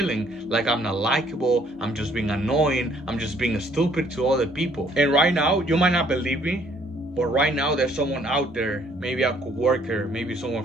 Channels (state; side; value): normal; both; correlation 0.63